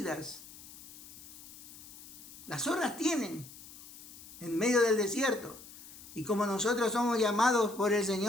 Las zorras tienen en medio del desierto. Y como nosotros somos llamados por el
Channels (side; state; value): left; noise; hiss, 17 dB below the sound